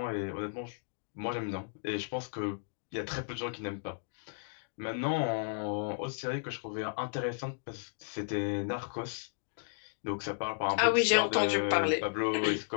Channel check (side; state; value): right; silent; digital silence